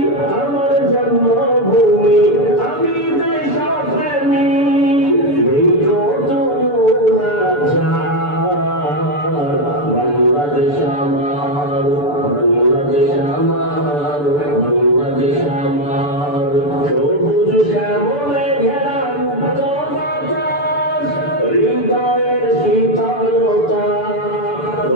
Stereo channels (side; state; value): right; late; 6.9 ms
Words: আমার জন্মভূমি, আমি দেশপ্রেমী, নেই কত নাচার। বাংলাদেশ আমার, বাংলাদেশ আমার, বাংলাদেশ আমার। সবুজ শ্যামলে ঘেরা মুক্ত বাতাস, হৃদয়ের শীতলতা,